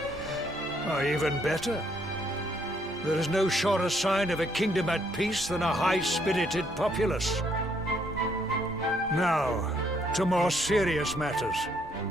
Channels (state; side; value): normal; both; correlation 0.70